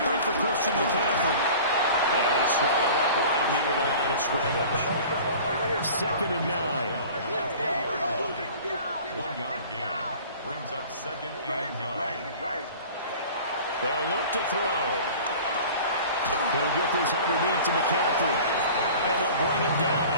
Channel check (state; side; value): inverted; both; correlation -0.42